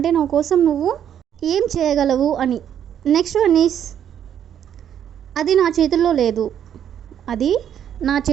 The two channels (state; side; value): quieter; left; 9.6 dB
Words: నా కోసం నువ్వు ఏం చేయగలవు అని. నెక్స్ట్ వన్ ఈస్ అది నా చేతుల్లో లేదు, అది నా